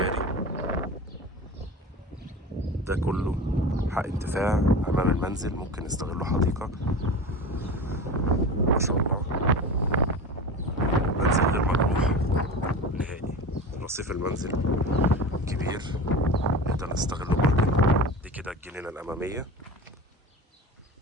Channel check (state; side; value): normal; both; correlation 0.31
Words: ده كله حق انتفاع أمام المنزل، ممكن نستغله حديقة. ما شاء الله، منزل غير مجروح نهائي. رصيف المنزل كبير، نقدر نستغله برضه. دي كده الجنينة الأمامية